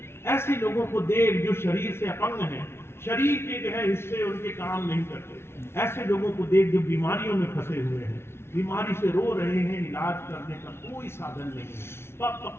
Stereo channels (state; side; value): late; right; 0.12 ms